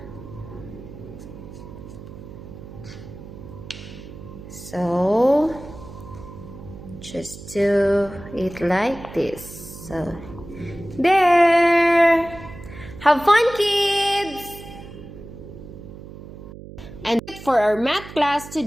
So just do it like this. So there. Have fun, kids. And for our math class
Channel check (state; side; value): noise; right; hum, 14 dB below the sound